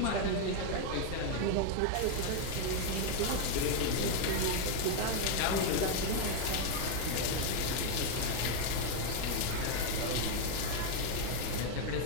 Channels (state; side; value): different; both; correlation 0.01